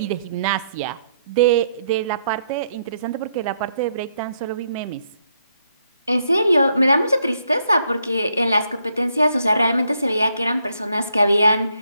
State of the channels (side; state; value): both; inverted; correlation -0.74